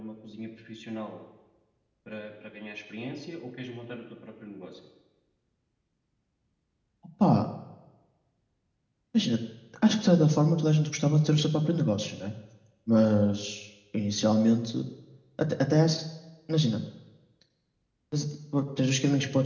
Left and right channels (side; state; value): both; identical; correlation 1.00